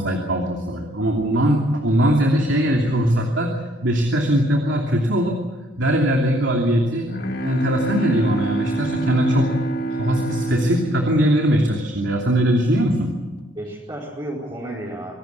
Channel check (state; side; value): normal; both; correlation 0.66